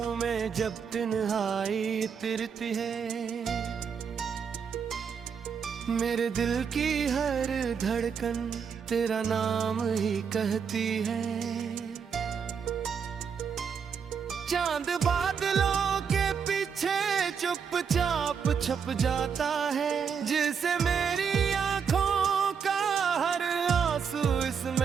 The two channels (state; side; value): quieter; left; 6.7 dB